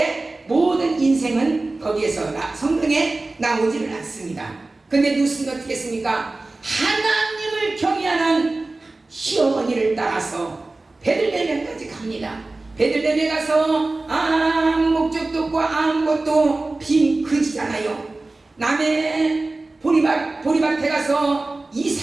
모든 인생은 거기에서 성경에 나오지를 않습니다. 근데 루스는 어떻게 했습니까? 하나님을 경외하는 시어머니를 따라서 베들레헴까지 갑니다. 베들레헴에 가서 아무 목적도 없고 아무것도 빈 그지잖아요. 남의 보리밭에 가서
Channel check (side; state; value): left; quieter; 3.2 dB